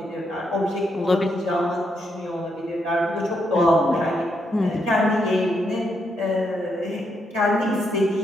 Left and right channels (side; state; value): both; normal; correlation 0.79